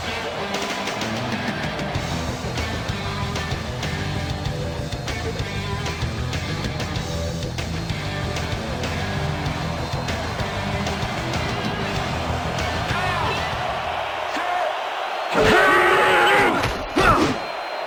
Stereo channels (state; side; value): identical; both; correlation 1.00